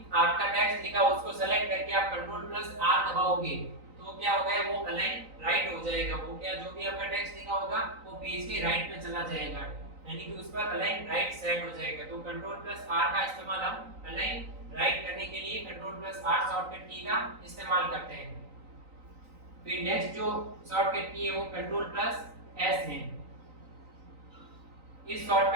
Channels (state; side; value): late; left; 3.9 ms